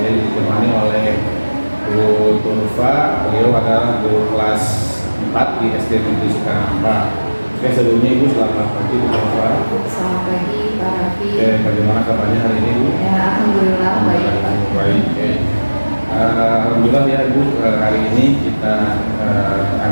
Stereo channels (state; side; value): inverted; both; correlation -1.00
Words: ditemani oleh Bu Turfa. Beliau adalah guru kelas 4 di SD Negeri Sukanhampa. Oke, sebelumnya Ibu selamat pagi Bu Turfa. Selamat pagi Pak Raffi. Oke, bagaimana kabarnya hari ini Bu? Ya, alhamdulillah baik Pak. Baik. Alhamdulillah ya Ibu, hari ini kita